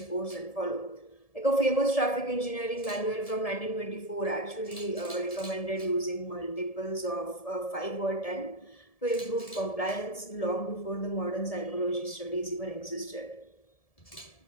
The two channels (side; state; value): right; late; 1.7 ms